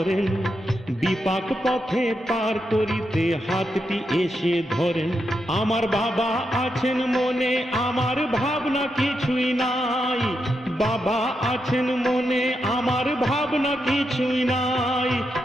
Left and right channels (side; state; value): both; normal; correlation 0.84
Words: বিপাক পথে পার করিতে হাতটি এসে ধরেন। আমার বাবা আছেন মনে, আমার ভাবনা কিছুই নাই। বাবা আছেন মনে, আমার ভাবনা কিছুই নাই।